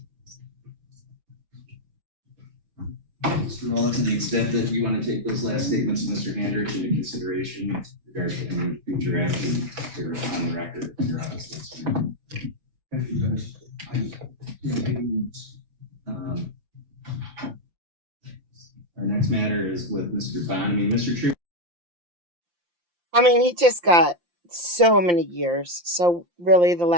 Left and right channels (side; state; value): left; late; 5.8 ms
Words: Mr. Rolla, to the extent that you want to take those last statements of Mr. Hendrich into consideration with regards to any future action, you're on the record in your office. Thank you, Judge. Our next matter is with Mr. Bonamy. Mr. True. I mean, he just got so many years. So really the